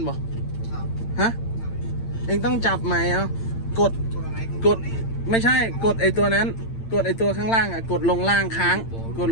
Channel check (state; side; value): late; right; 8.8 ms